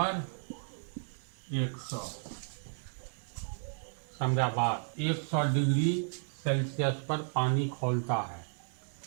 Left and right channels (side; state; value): left; silent; 55 dB below the other